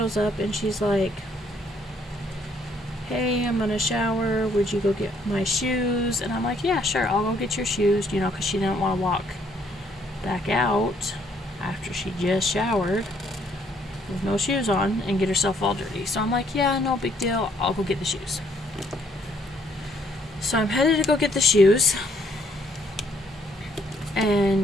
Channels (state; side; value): normal; both; correlation 0.67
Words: up and she's like, hey, I'm gonna shower, would you go get my shoes? And I'm like, yeah, sure, I'll go get your shoes, you know, because she didn't want to walk back out after she just showered with no shoes on and get herself all dirty. So I'm like, yeah, no big deal, I'll go get the shoes. So I'm headed to go get the shoes,